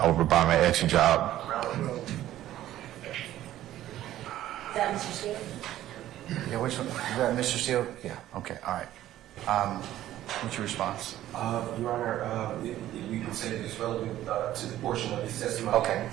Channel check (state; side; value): quieter; left; 13.4 dB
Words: over by my extra job. Is that Mr. Steele? Yeah, which one? Is that Mr. Steele? Yeah, okay, all right. What's your response? Your Honor, you can say that it's relevant to the portion of his testimony. Okay.